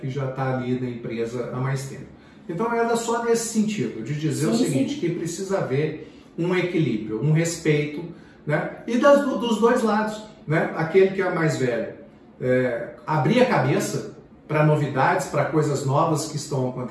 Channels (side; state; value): both; identical; correlation 1.00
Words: já está ali na empresa há mais tempo. Então era só nesse sentido, de dizer o seguinte, que precisa haver um equilíbrio, um respeito, né? E dos dois lados, né? Aquele que é mais velho, abrir a cabeça para novidades, para coisas novas que estão